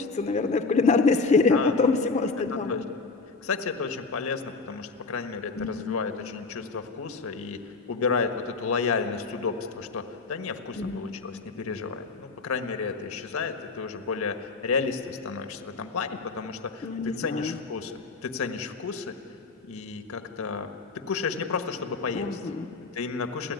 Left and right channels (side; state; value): right; quieter; 4.1 dB